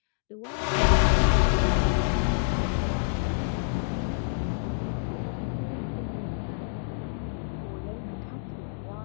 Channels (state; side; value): silent; right; digital silence